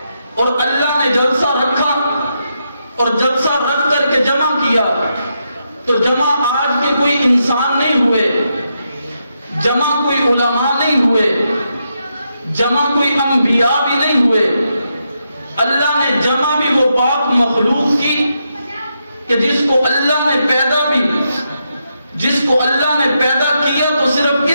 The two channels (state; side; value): inverted; both; correlation -0.83